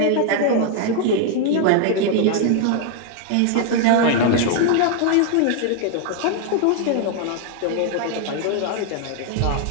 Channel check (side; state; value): both; different; correlation 0.00